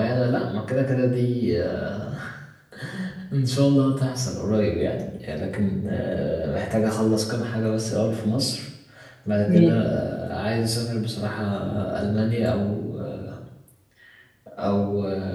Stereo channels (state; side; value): identical; both; correlation 1.00